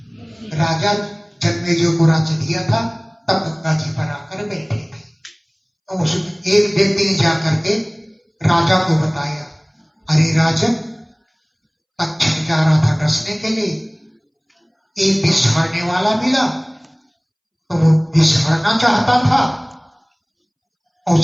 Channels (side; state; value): both; identical; correlation 1.00